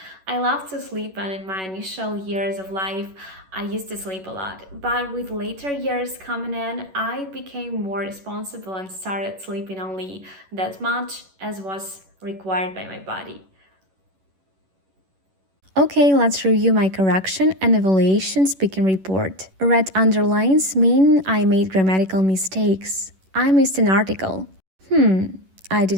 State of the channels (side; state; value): left; late; 11 ms